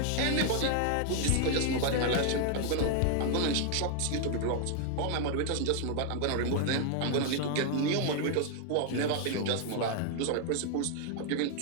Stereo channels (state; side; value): different; both; correlation 0.00